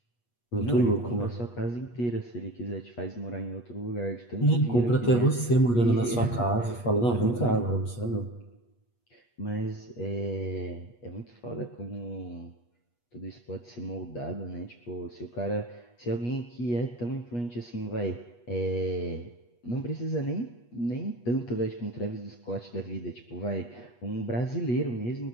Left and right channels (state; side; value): late; right; 8.3 ms